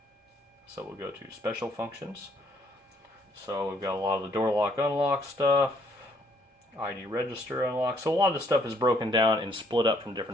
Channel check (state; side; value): normal; both; correlation 0.67